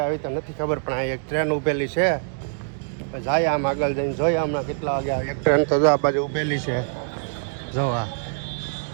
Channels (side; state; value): left; silent; digital silence